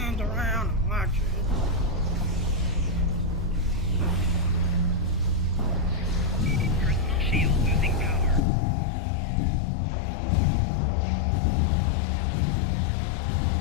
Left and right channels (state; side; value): drops out; right; at 8.4 s